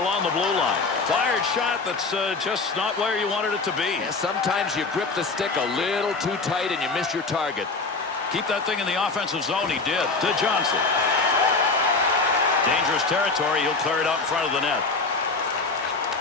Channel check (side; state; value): right; quieter; 3.9 dB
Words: along the blue line. Fired shot that's just not where you wanted it to be. Yeah, sometimes you grip the stick a little too tight and you miss your target. Keep that thing in the offensive zone. He did. To Johnson. Dangerous territory. He'll clear it out in front of the net.